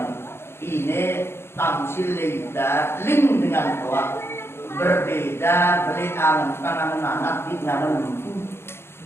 ini tamsil leda link dengan tua berbeda beriangan tangan anak di tangan lembu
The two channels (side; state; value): right; late; 0.12 ms